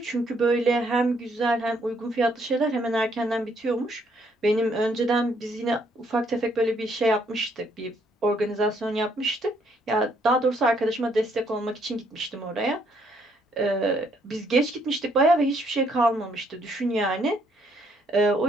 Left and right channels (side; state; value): both; normal; correlation 0.69